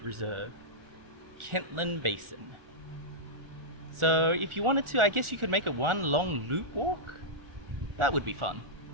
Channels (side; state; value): left; late; 1.4 ms